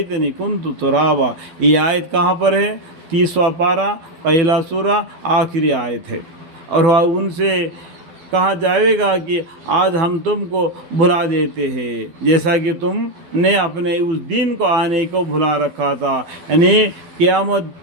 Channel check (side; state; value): left; late; 12 ms